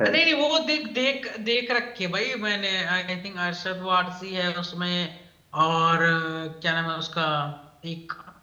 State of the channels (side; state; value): both; identical; correlation 1.00